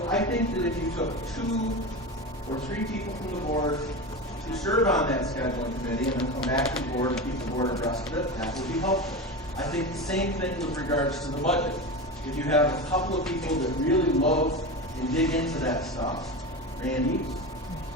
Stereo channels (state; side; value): normal; both; correlation 0.24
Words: I think that if you took 2 or 3 people from the board to serve on that scheduling committee and then come back to the board and keep the board abreast of it, that would be helpful. I think the same thing with regards to the budget. If you have a couple of people that really love and dig into that stuff, Randy,